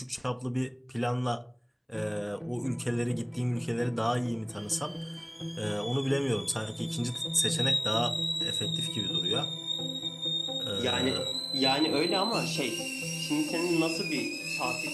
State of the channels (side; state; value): both; identical; correlation 1.00